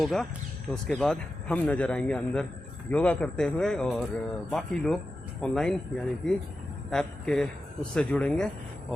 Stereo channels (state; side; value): normal; both; correlation 0.92